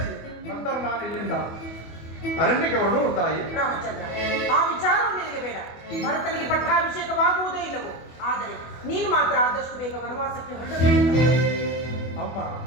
ನಂತರ ನಾನು ಇಲ್ಲಿಂದ ಅರಣ್ಯಕ್ಕೆ ಹೊರಡು ತಾಯಿ. ರಾಮಚಂದ್ರ, ಆ ವಿಚಾರವು ನಿನಗೆ ಬೇಡ. ಭರತನಿಗೆ ಪಟ್ಟಾಭಿಷೇಕವಾಗುವುದೇ ಇಲ್ಲವೋ, ಆದರೆ ನೀನು ಮಾತ್ರ ಆದಷ್ಟು ಬೇಗ ವನವಾಸಕ್ಕೆ ಹೊರಡಬೇಕು. ಅಮ್ಮ,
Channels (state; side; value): late; right; 24 ms